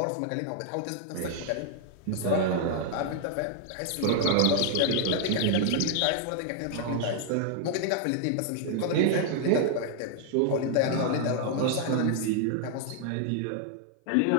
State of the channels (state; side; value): different; both; correlation 0.00